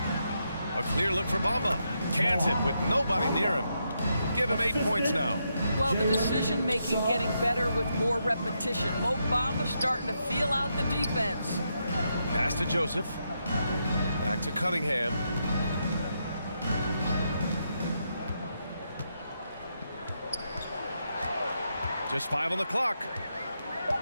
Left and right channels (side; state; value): both; inverted; correlation -0.82